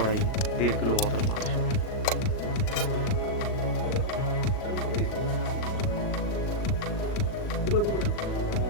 1.5 কিলো মতন মাংস।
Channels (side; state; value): right; late; 38 ms